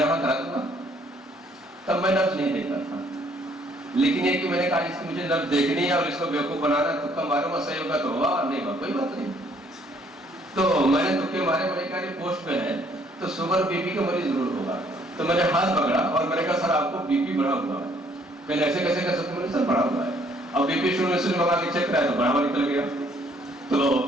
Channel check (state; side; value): normal; both; correlation 0.64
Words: وہاں کرا دوں گا. تب میں لفظ نہیں دیکھتا تھا, لیکن یہ کہ میں نے کہا اس کی مجھے لفظ دیکھنی ہے اور اس کو بیوقوف بنانا, تکا ماروں گا, صحیح ہوگا تو ہوا, نہیں ہوا کوئی بات نہیں. تو میں نے تکے مارے, میں نے کہا یہ پوسٹ پہ ہے تو شوگر بی پی کا مریض ضرور ہوگا. تو میں نے ہاتھ پکڑا اور میں نے کہا سر آپ کو بی پی بڑھا ہوا ہے. پہلے ایسے کیسے کر سکتے, میں نے سر بڑھا ہوا ہے. اب بی پی شروع سے لگا کے چیک کرایا تو بڑھاوا نکل گیا. تو